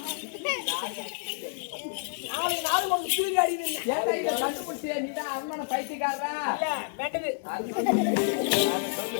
4 நாள் ஒரு தூங்கி அடிக்குது ஏன்டா இத கண்டுபிடிச்சே நீதான் அம்மன பைத்தியக்காரரா இல்ல மெட்டது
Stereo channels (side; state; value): right; silent; digital silence